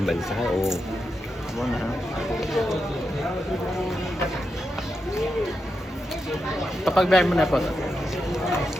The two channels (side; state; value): both; normal; correlation 0.86